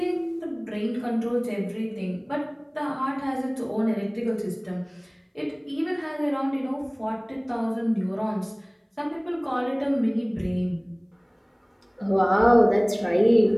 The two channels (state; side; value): identical; both; correlation 1.00